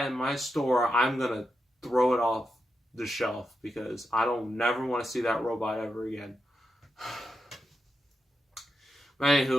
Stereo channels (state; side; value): normal; both; correlation 0.87